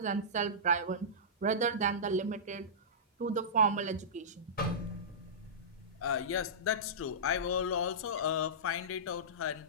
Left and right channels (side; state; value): both; normal; correlation -0.18